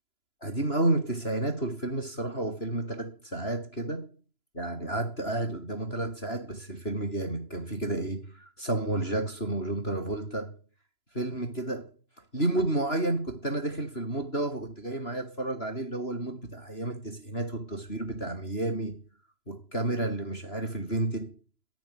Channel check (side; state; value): right; late; 3.0 ms